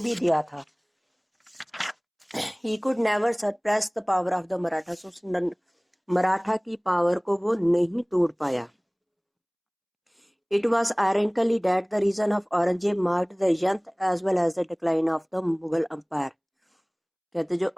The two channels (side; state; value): both; identical; correlation 1.00